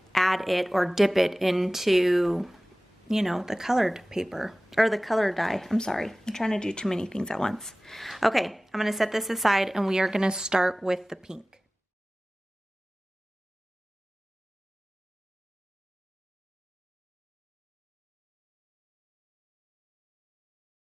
add it or dip it into, you know, the colored paper or the color dye. I'm sorry, I'm trying to do too many things at once. Okay, I'm gonna set this aside and we are gonna start with the pink.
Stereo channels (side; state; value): both; normal; correlation 0.98